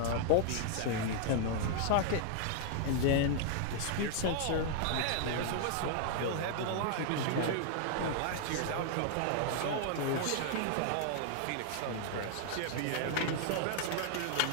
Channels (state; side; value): different; both; correlation 0.00